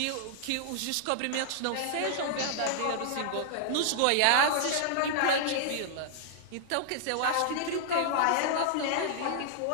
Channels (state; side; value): different; both; correlation -0.01